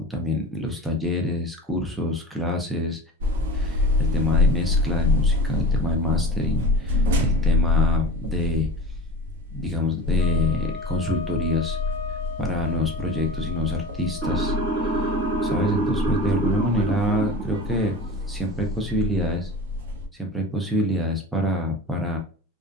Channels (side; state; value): both; normal; correlation 0.34